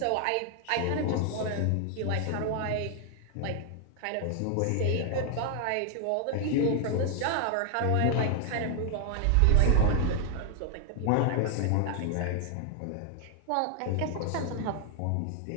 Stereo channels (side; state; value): both; different; correlation 0.00